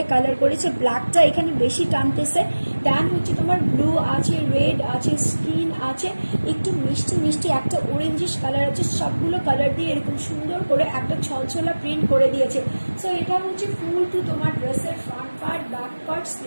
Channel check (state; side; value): inverted; both; correlation -1.00